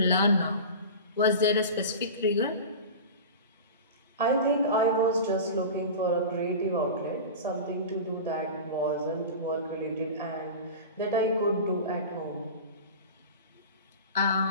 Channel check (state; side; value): inverted; both; correlation -0.31